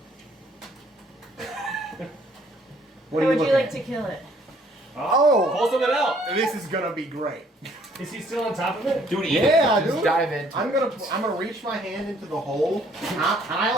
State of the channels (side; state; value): both; normal; correlation 0.62